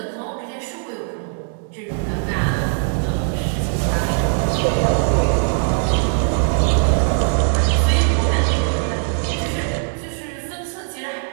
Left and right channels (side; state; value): left; silent; 57 dB below the other